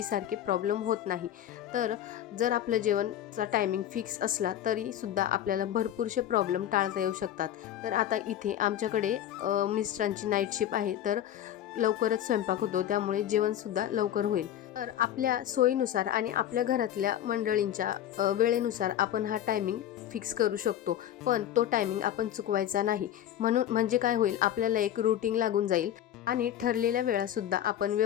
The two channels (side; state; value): right; quieter; 11.3 dB